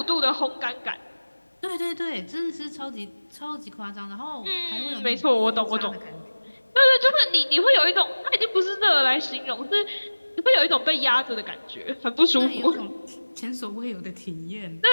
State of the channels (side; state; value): both; inverted; correlation -1.00